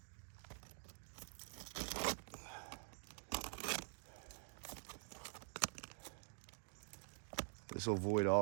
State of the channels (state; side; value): silent; left; digital silence